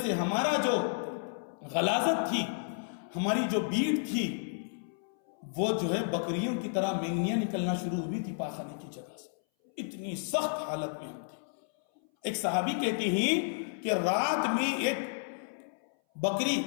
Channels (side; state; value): right; silent; 57 dB below the other